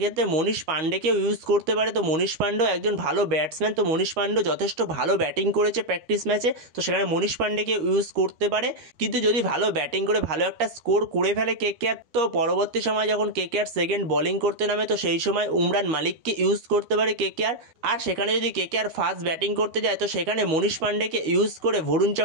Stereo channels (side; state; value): left; late; 13 ms